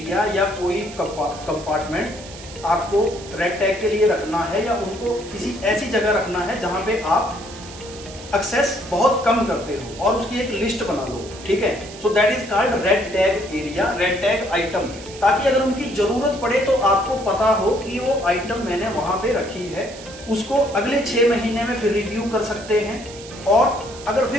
या कोई कंपार्टमेंट आपको रेड टैग के लिए रखना है, या उनको किसी ऐसी जगह रखना है जहां पे आप एक्सेस बहुत कम करते हो, और उसकी एक लिस्ट बना लो, ठीक है। सो that is called red tag area, red tag item, ताकि अगर उनकी जरूरत पड़े तो आपको पता हो कि वो आइटम मैंने वहां पे रखी है, उसको अगले 6 महीने में फिर रिव्यू कर सकते हैं। और अगर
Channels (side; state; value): right; noise; hiss, 16 dB below the sound